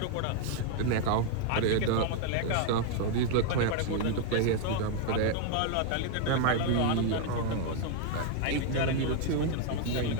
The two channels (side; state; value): both; different; correlation 0.00